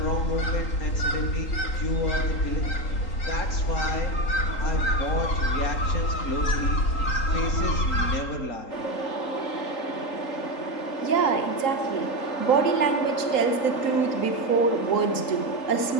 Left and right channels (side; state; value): right; late; 3.8 ms